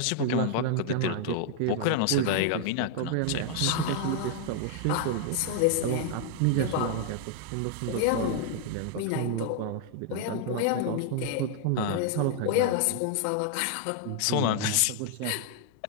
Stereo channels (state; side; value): different; both; correlation 0.00